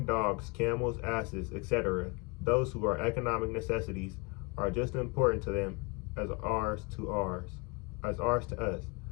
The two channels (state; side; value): quieter; right; 28.4 dB